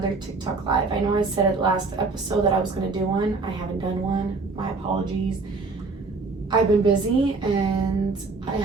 TikTok live. I know I said it last episode that I was going to do one. I haven't done one. My apologies. I've been busy and I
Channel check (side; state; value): left; quieter; 3.9 dB